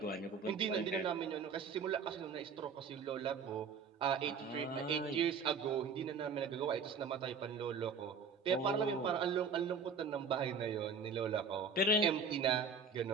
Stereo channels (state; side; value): quieter; left; 5.2 dB